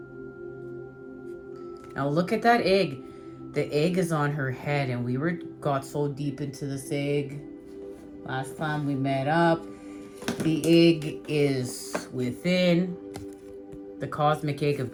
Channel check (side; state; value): both; identical; correlation 1.00